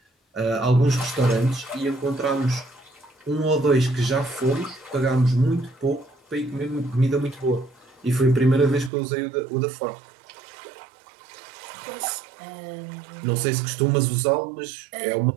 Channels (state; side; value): drops out; left; at 8.9 s